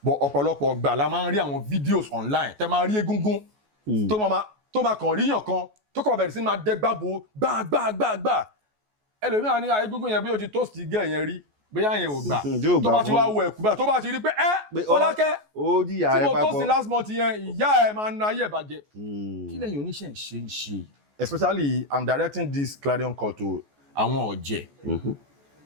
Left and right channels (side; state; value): left; late; 14 ms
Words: but ọ̀pọ̀lọpọ̀ gbà la máa ń rí àwọn videos online tẹ́ máa rí egungun tó máa kàn ríyàn kan tó kàn bẹ̀rẹ̀ sí máa dẹ́gbàbò gbàgbàgbàgbà ẹlòmíràn ní egungun yẹn bí ó ti toast gẹ̀ yẹn rí bóyá yẹn ò gbà tó bá ti wá wọ ẹ̀kú báyìí tó bá ti rí pé Fọlákẹ́ tí mo toast last month yẹn ìyá ẹ̀ máa ń na ayé ìbàjẹ́ kí lẹ́yìn oníṣẹ́ ń ṣe especially I'm directing this clarion call to àwọn ọ̀jẹ̀